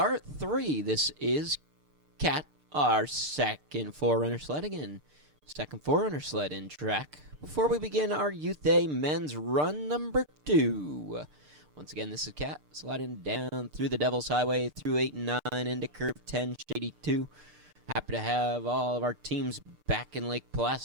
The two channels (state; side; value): late; left; 6.7 ms